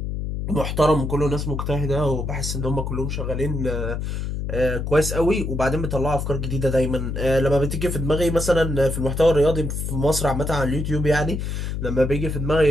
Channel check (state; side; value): noise; left; hum, 3 dB below the sound